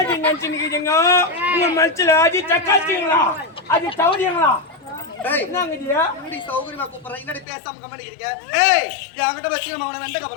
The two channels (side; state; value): right; drops out; at 7.5 s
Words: அது சௌரியங்களா சௌகரியமா கூப்பிடுறேன் என்னடி பேசாம கம்பெனிக்கிறீங்க என்கிட்ட வச்சு நம்ம அவனை வெண்டைக்கா